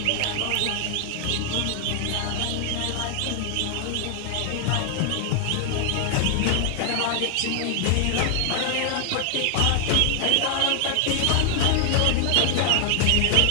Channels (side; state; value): both; different; correlation 0.00